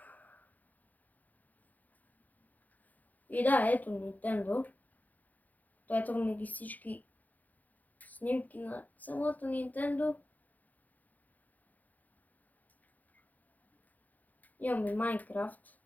И да, ето Nintendo. Ето ми ги всички снимки на самото Nintendo. Имам и Minecraft.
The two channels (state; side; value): late; right; 0.081 ms